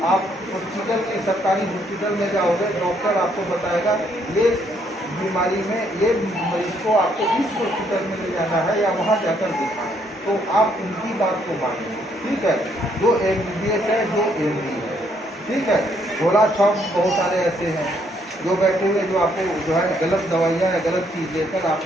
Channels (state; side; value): normal; both; correlation 0.70